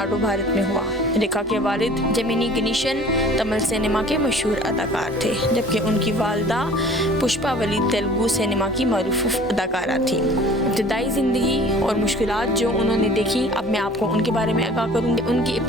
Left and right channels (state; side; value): normal; both; correlation 0.47